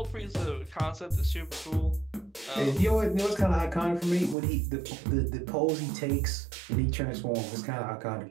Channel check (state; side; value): drops out; left; at 4.4 s